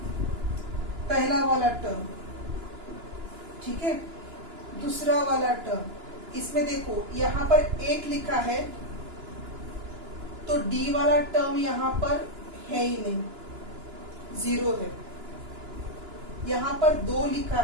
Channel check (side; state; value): left; late; 2.9 ms